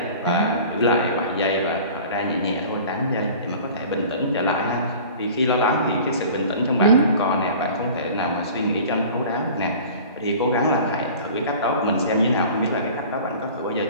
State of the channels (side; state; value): both; inverted; correlation -0.42